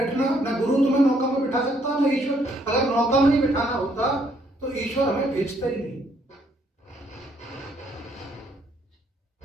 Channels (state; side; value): normal; both; correlation 0.69